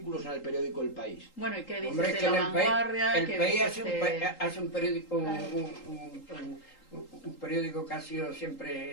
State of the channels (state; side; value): late; right; 3.8 ms